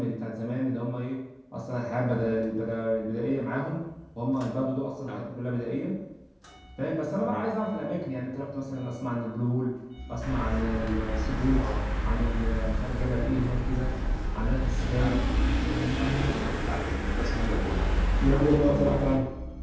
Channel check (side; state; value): both; identical; correlation 1.00